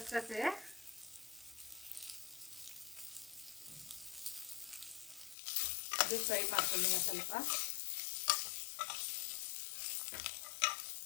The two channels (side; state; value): right; drops out; at 5.4 s